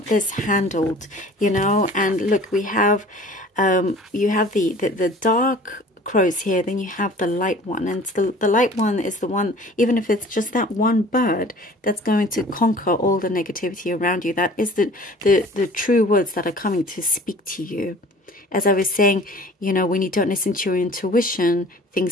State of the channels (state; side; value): normal; both; correlation 0.47